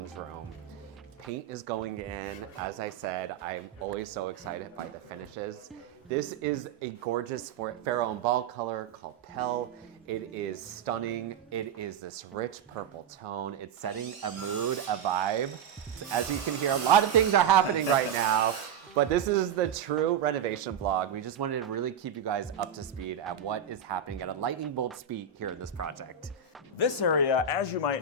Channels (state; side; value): quieter; left; 6.7 dB